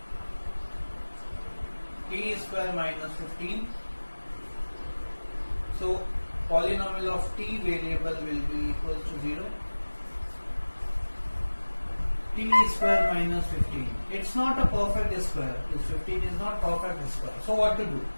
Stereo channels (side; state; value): both; inverted; correlation -1.00